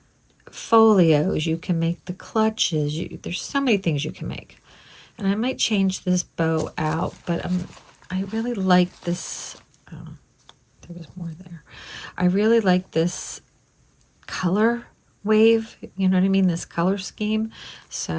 folios, you can make the clutches, there's so many things you can make. And I might change this bow out, but I really like this. Oh, there was more there. I really like this color wave, you know what I mean, this color scheme,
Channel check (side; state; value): both; identical; correlation 1.00